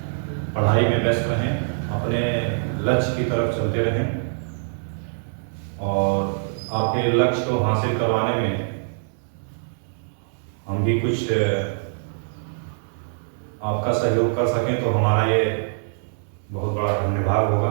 पढ़ाई में व्यस्त रहें, अपने लक्ष्य की तरफ चलते रहें और आपके लक्ष्य को हासिल करवाने में हम भी कुछ आपका सहयोग कर सकें तो हमारा ये बहुत बड़ा धन्यवाद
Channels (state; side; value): silent; left; digital silence